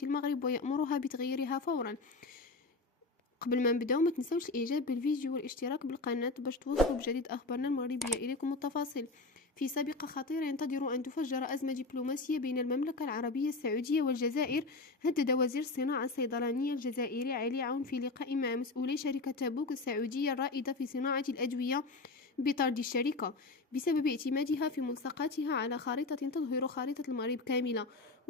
المغرب ويأمرها بتغييرها فورا. قبل ما نبداو ما تنسوش الاعجاب بالفيديو والاشتراك بالقناة باش توصلوا بجديد اخبارنا المغربية اليكم التفاصيل. في سابقة خطيرة ينتظر ان تفجر ازمة دبلوماسية بين المملكة العربية السعودية والجزائر. هدد وزير الصناعة الصيدلانية الجزائري علي عون في لقاء مع مسؤولي شركة تابوك السعودية الرائدة في صناعة الأدوية بطرد الشركة بسبب اعتمادها في ملصقاتها على خارطة تظهر خارطة المغرب كاملة.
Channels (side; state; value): right; quieter; 3.5 dB